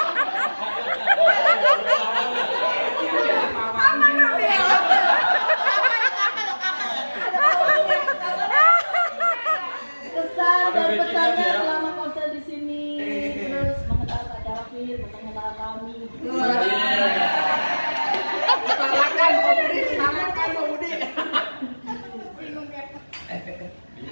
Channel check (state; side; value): inverted; both; correlation -1.00